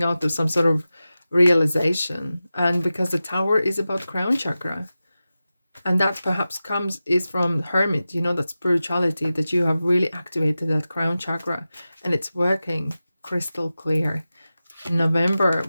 out of some sort of realization. And because the Tower is about crown chakra, and that perhaps is from Hermit, you know, that spirituality, that you have really activated that crown chakra and it's working crystal clear. November,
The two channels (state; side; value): inverted; both; correlation -0.94